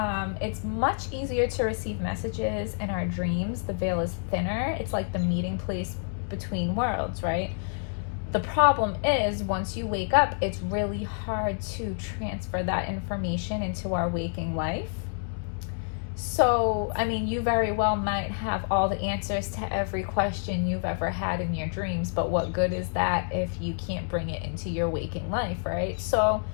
It's much easier to receive messages in our dreams. The veil is thinner. It's like the meeting place between worlds, right? The problem is, once you wake up, it's really hard to transfer that information into our waking life. So, you very well might have all the answers to every question you've ever had in your dreams, but what good is that if you can't bring it into your waking life, right? So,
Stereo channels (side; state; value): right; silent; digital silence